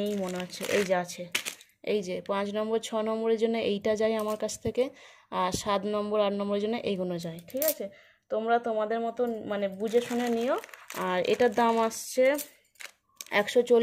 মনে হচ্ছে, এই যে আছে, এই যে 5 নম্বর 6 নম্বরের জন্য এইটা যায় আমার কাছ থেকে, আর 7 নম্বর 8 নম্বরের জন্য এইগুলো যায়, ঠিক আছে। তোমরা তোমাদের মতন মানে বুঝে শুনে নিও। আর এটার দাম আসছে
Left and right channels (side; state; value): both; identical; correlation 1.00